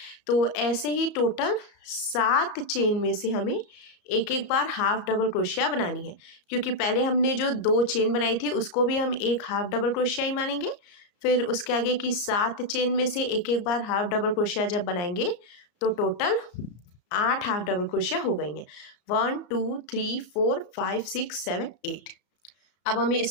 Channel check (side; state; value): right; late; 34 ms